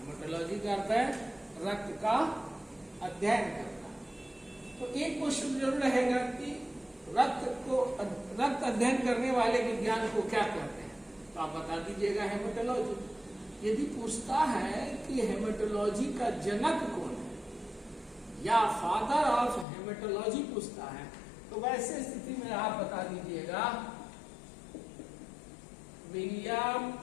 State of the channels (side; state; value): right; drops out; at 19.7 s